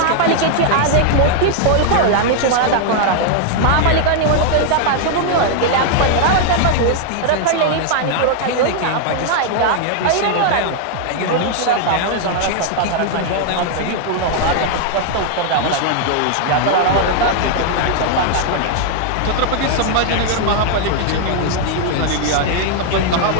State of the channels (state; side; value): different; both; correlation 0.00